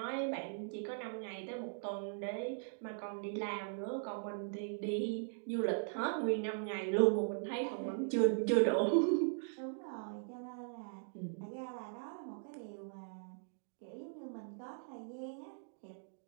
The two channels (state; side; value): silent; left; digital silence